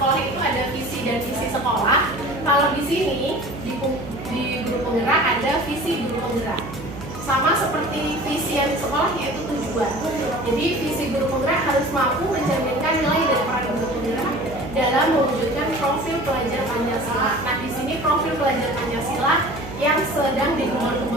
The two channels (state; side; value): noise; right; hum, 12 dB below the sound